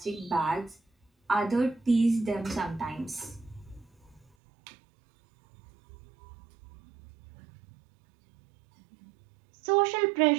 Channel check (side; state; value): left; drops out; at 4.2 s